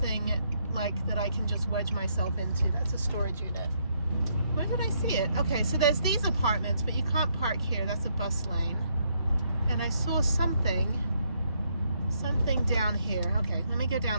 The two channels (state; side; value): inverted; both; correlation -0.74